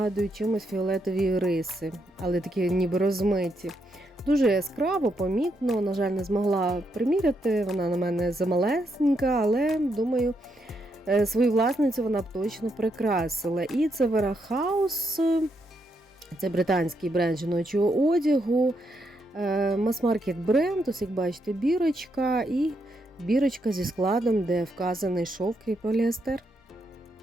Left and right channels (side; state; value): both; normal; correlation 0.79